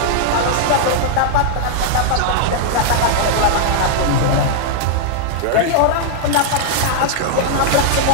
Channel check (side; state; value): both; different; correlation -0.01